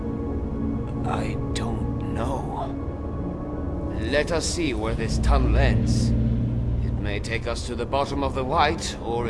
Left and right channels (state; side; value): identical; both; correlation 1.00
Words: don't know. Let us see where this tunnel ends. It may take us to the bottom of the White or